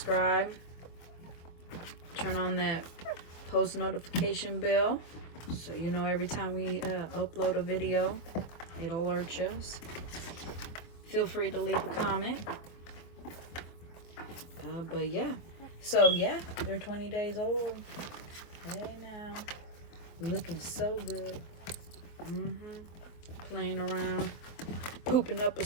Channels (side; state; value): right; late; 24 ms